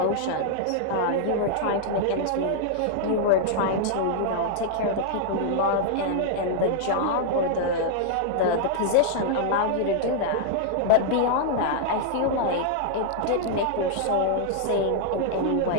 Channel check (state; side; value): different; both; correlation -0.01